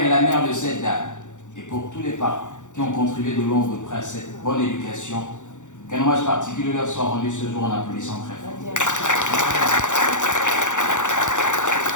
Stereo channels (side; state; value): right; late; 0.85 ms